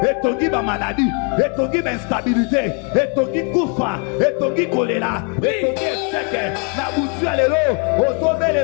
Etongi ba maladie. Etongi ba instabilité. Etongi kufa. Etongi kolela. Etongi eseke. Na butu ya lelo.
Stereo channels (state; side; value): quieter; right; 37.7 dB